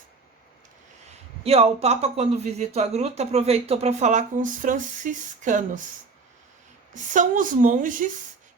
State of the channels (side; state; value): left; quieter; 4.3 dB